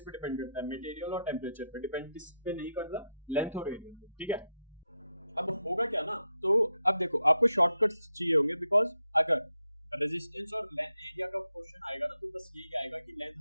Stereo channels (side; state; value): both; inverted; correlation -0.83